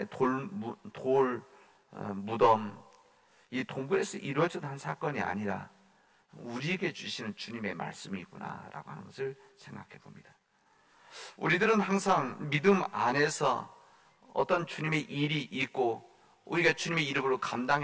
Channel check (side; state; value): both; identical; correlation 1.00